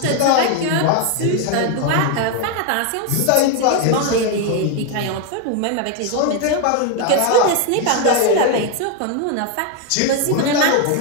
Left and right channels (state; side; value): different; both; correlation 0.01